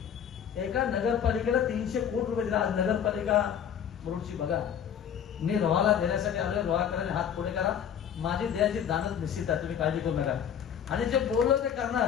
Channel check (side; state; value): right; quieter; 8.6 dB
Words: एका नगरपालिकेला 300 कोटी रुपये दिला. आज नगरपालिका मुरुडची बघा. मी रोहाला देण्यासाठी आलोय. रोहाकरांनी हात पुढे करा. माझी द्यायची दानच निश्चित आहे, तुम्ही काळजी करू नका. आणि जे बोललो ते